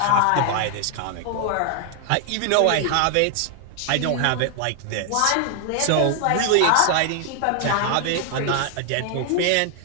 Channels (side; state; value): both; different; correlation 0.00